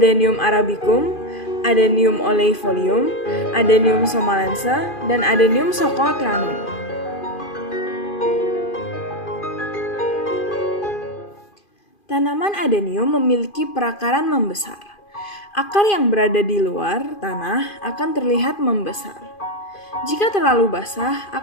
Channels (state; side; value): late; right; 2.5 ms